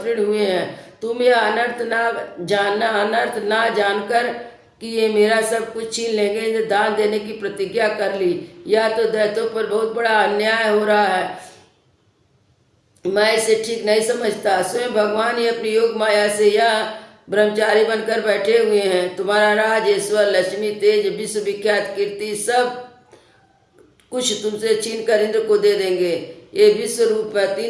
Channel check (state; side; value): identical; both; correlation 1.00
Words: हुए हैं। तुम यह अनर्थ ना जानकर कि ये मेरा सब कुछ छीन लेंगे, इन्हें दान देने की प्रतिज्ञा कर ली। या तो दैत्यों पर बहुत बड़ा अन्याय हो रहा है, मैं इसे ठीक नहीं समझता। स्वयं भगवान ही अपनी योग माया से यह ब्रह्मचारी बनकर बैठे हुए हैं। तुम्हारा राज, ईश्वर, लक्ष्मी, तेज, विश्व विख्यात कीर्ति सब कुछ तुमसे छीन कर इंद्र को दे देंगे। ये विश्व रूप है,